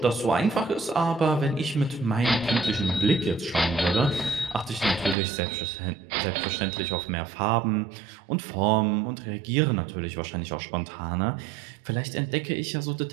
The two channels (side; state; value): left; drops out; at 5.2 s